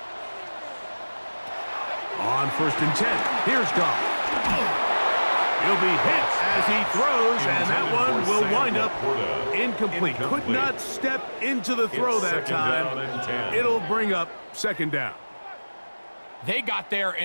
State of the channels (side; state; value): both; inverted; correlation -1.00